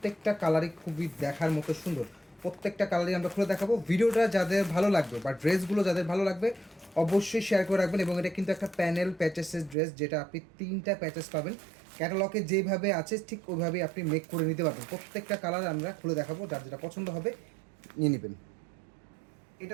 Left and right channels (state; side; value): drops out; left; at 9.8 s